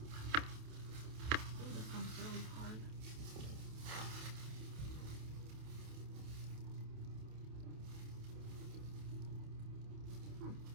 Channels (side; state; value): left; late; 28 ms